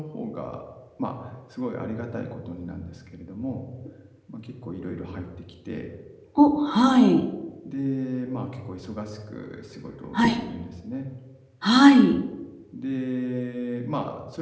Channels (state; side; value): identical; both; correlation 1.00